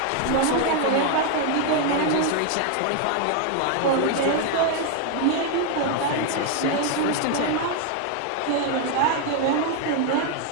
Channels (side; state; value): both; different; correlation 0.00